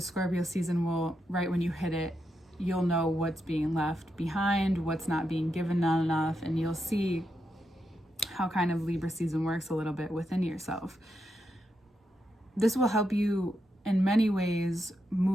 Scorpio season will, right when you hit it, you'll know what's being left behind, what's not being given enough, and you'll see how kind of Libra season works a little bit within yourself. This will help you in many ways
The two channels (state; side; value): normal; both; correlation 0.84